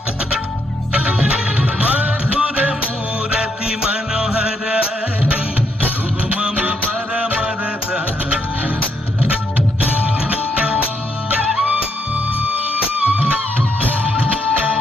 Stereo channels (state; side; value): normal; both; correlation 0.76